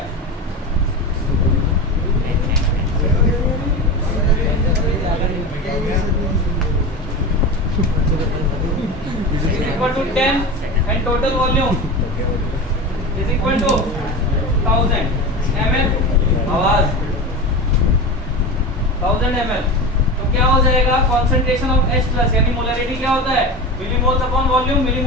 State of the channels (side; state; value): both; normal; correlation 0.26